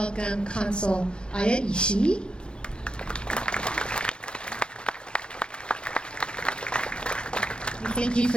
Consul Aya Ishii, thank you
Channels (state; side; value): late; right; 0.052 ms